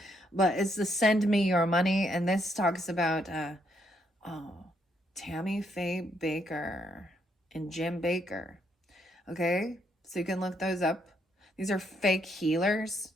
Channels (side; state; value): both; normal; correlation 0.74